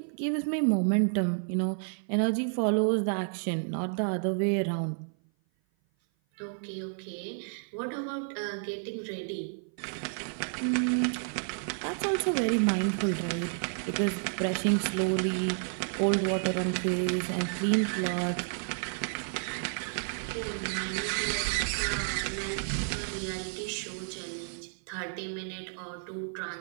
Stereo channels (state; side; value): silent; left; 55 dB below the other